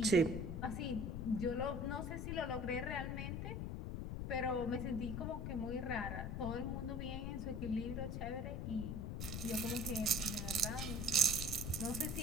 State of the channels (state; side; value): noise; left; rumble, 3 dB below the sound